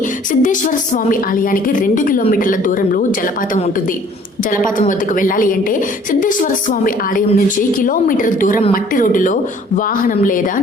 సిద్ధేశ్వర స్వామి ఆలయానికి 2 కిలోమీటర్ల దూరంలో జలపాతం ఉంటుంది. జలపాతం వద్దకు వెళ్ళాలి అంటే సిద్ధేశ్వర స్వామి ఆలయం నుంచి కిలోమీటర్ దూరం మట్టి రోడ్డులో వాహనం లేదా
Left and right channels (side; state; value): both; normal; correlation 0.55